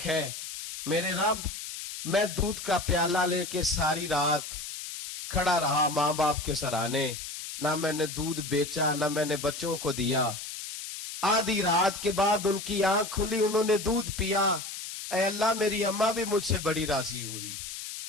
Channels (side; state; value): left; noise; hiss, 8 dB below the sound